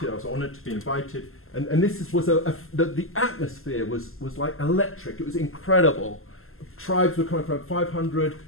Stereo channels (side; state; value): right; late; 0.62 ms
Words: I was honoured to be invited, and this was the atmosphere was like electric. It was incredible. Tribes were coming from 500,